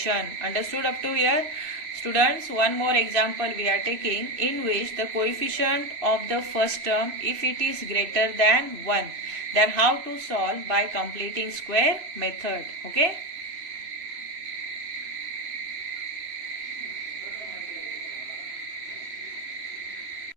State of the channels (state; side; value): late; left; 3.0 ms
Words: Understood up to here? Students, one more example we are taking, in which the coefficient of the first term, if it is greater than 1, then how to solve? By completing square method. Okay.